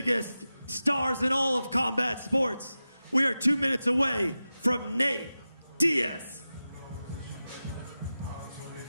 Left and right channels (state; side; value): inverted; both; correlation -0.94